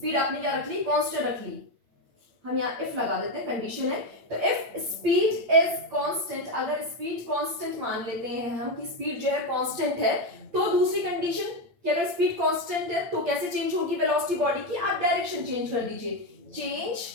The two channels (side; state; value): left; late; 8.8 ms